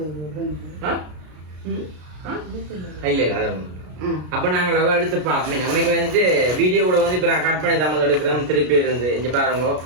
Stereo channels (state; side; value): late; left; 33 ms